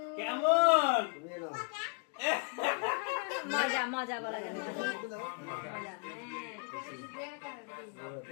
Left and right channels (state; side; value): quieter; right; 36.7 dB